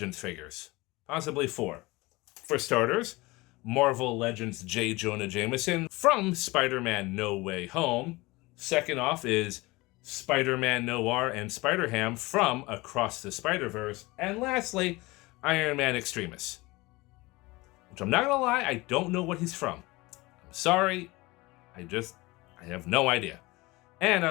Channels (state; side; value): quieter; right; 22.2 dB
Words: figures. Possibly 4. For starters, Marvel Legends J. Jonah Jameson from Spider-Man No Way Home. Second off is Spider-Man Noir and Spider-Ham from Across the Spider-Verse. And lastly, Iron Man Extremis. Which I'm not gonna lie, I don't know what he's from. I'm sorry. I have no idea. And